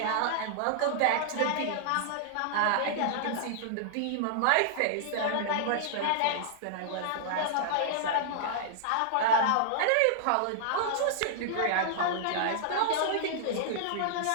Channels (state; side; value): different; both; correlation -0.01